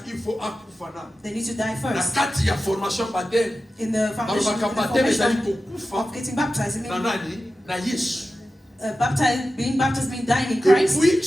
they need to die first. In the foundation of getting baptized, being baptized means dying in Christ. Et puis,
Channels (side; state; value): both; normal; correlation 0.93